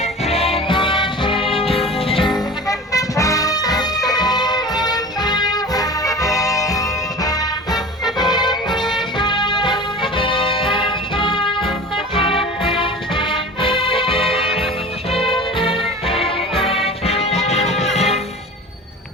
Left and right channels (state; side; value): normal; both; correlation 0.37